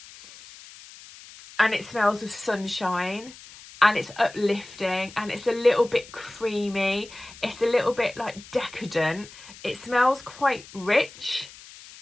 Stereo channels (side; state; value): left; noise; hiss, 19 dB below the sound